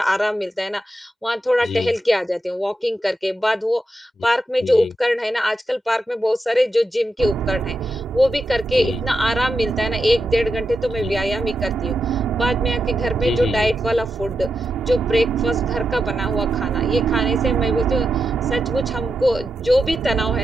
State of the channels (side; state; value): both; normal; correlation 0.87